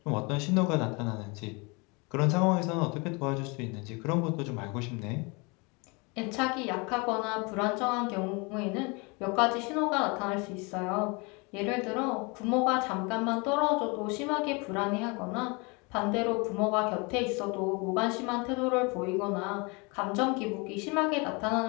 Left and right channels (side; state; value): right; quieter; 29.2 dB